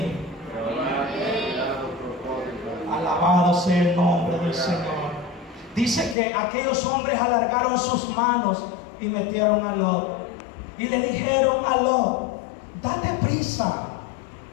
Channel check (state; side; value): drops out; right; at 6.2 s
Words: Alabado sea el nombre del Señor. Dice que aquellos hombres alargaron sus manos y metieron a Lot. Y le dijeron a Lot: date prisa,